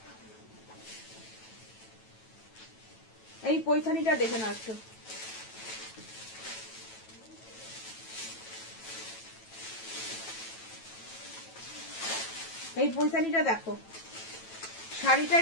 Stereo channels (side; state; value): right; late; 9.1 ms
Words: এই পৈথানিটা দেখে নাও একটু, এই পৈথানিটা দেখো, শাড়িটা